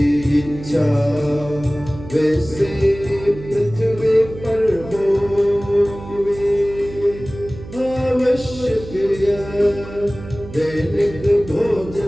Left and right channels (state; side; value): noise; right; hum, 14 dB below the sound